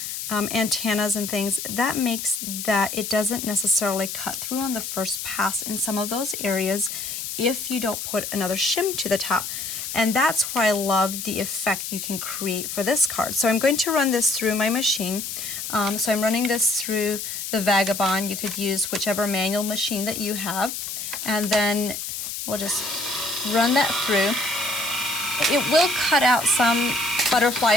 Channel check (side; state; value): left; noise; hiss, 6 dB below the sound